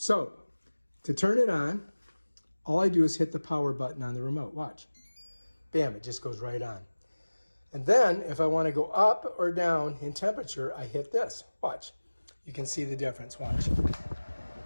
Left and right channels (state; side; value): inverted; both; correlation -1.00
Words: So to turn it on, all I do is hit the power button on the remote. Watch. Bam, it just goes right on. And then if I want to go up or down in temperature, I hit this. Watch. You can see the difference. Watch.